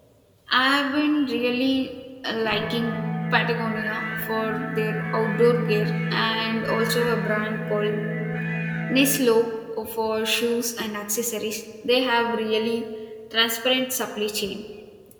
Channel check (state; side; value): identical; both; correlation 1.00